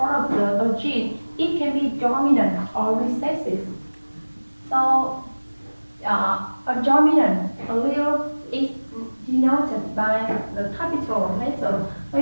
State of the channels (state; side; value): inverted; both; correlation -1.00